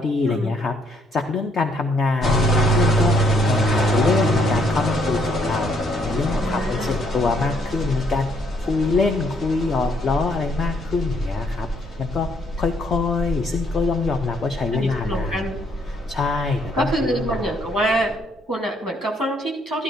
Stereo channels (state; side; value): normal; both; correlation 0.69